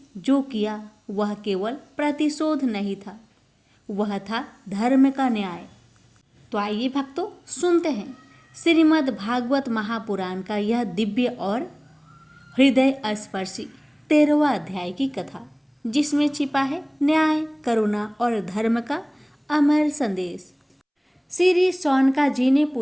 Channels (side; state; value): both; identical; correlation 1.00